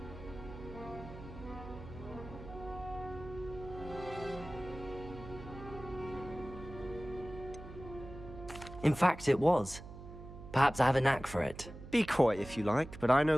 In fact, it was. Perhaps I have a knack for it. Be coy if you like, but I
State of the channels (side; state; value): right; noise; hum, 13 dB below the sound